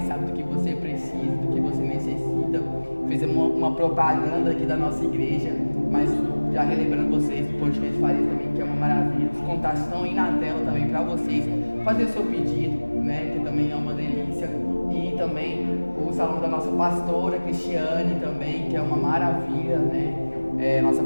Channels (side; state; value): both; inverted; correlation -1.00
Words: sabe do que você precisa, do que você necessita. Fizemos uma propaganda aqui da nossa igreja, mas já relembrando vocês do podcast Farias também, que é uma maravilha. Os contatos estão aí na tela também para vocês fazer o seu pedido, né? Que também é uma delícia. E também o salão da nossa pastora Cristiane também, que é uma maravilha, né? Nossa